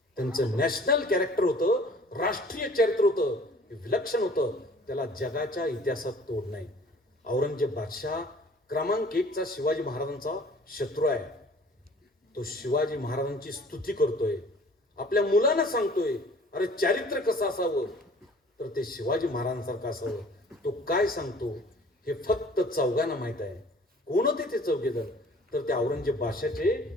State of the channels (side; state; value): both; normal; correlation 0.51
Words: त्यांचं नॅशनल कॅरेक्टर होतं, राष्ट्रीय चरित्र होतं, विलक्षण होतं. त्याला जगाच्या इतिहासात तोड नाही. औरंगजेब बादशाह क्रमांक 1चा शिवाजी महाराजांचा शत्रू आहे. तो शिवाजी महाराजांची स्तुती करतोय, आपल्या मुलांना सांगतोय अरे चारित्र्य कसं असावं तर ते शिवाजी महाराजांसारखं असावं. तो काय सांगतो हे फक्त चौघांना माहित आहे. कोण होते ते चौघेजण? तर ते औरंगजेब